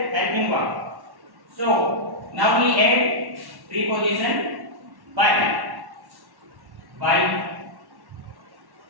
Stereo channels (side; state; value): left; late; 1.1 ms